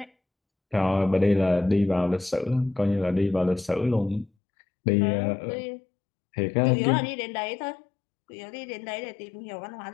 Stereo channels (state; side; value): drops out; right; at 4.3 s